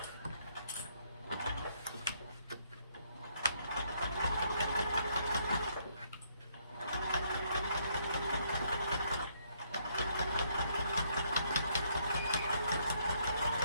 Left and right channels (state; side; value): inverted; both; correlation -0.70